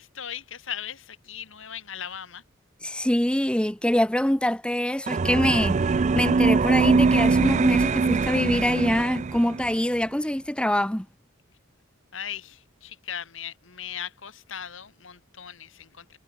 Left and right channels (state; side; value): normal; both; correlation 0.74